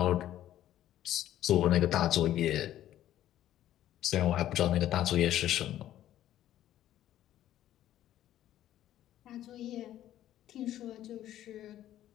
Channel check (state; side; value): quieter; right; 12.6 dB